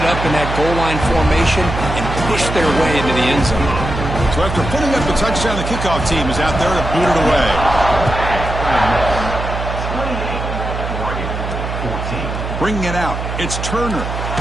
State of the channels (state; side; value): noise; right; hum, 5 dB below the sound